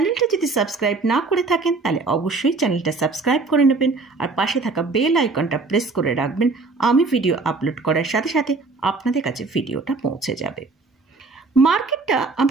যদি সাবস্ক্রাইব না করে থাকেন তাহলে অবশ্যই চ্যানেলটা সাবস্ক্রাইব করে নেবেন, আর পাশে থাকা বেল আইকনটা প্রেস করে রাখবেন। আমি ভিডিও আপলোড করার সাথে সাথে আপনাদের কাছে ভিডিওটা পৌঁছে যাবে। মার্কেটটা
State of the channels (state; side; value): quieter; left; 3.9 dB